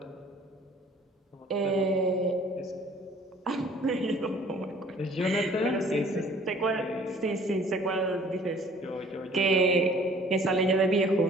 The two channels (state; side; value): normal; both; correlation 0.54